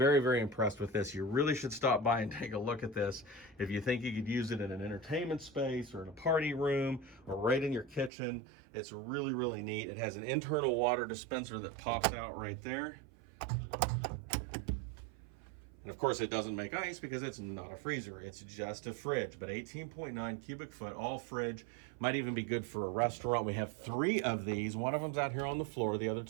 very impressed with this. You really should stop by and take a look at this. If you think you could use it in an entertainment space or in a party room or right in your kitchen, it's really, really neat. It has an internal water dispenser that pops out right there. And of course it doesn't make ice because it's not a freezer, it's just a fridge. But 18.9 cubic foot, all fridge, might even be good for a restaurant. We have 3 of these. One of them's out here on the floor, the other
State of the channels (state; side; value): drops out; left; at 8.1 s